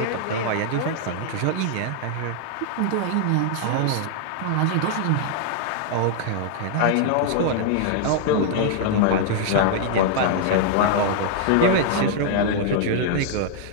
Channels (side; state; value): both; different; correlation -0.01